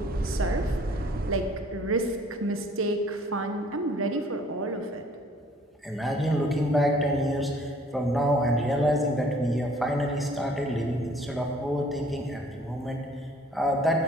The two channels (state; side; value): normal; both; correlation 0.56